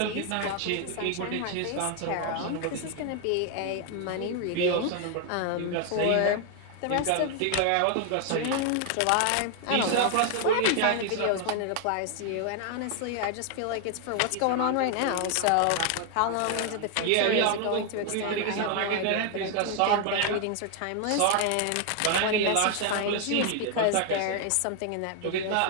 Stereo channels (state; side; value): different; both; correlation 0.00